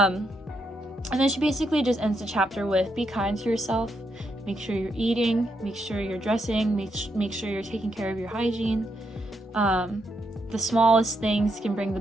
then she basically just ends the chapter with, be kind to yourself, make sure you're eating, make sure you're dressing, make sure you're taking care of your hygiene. The smallest things can bring the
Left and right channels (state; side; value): normal; both; correlation 0.79